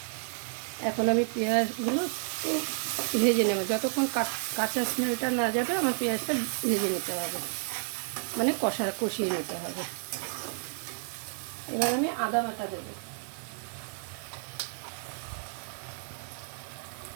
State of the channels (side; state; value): left; silent; digital silence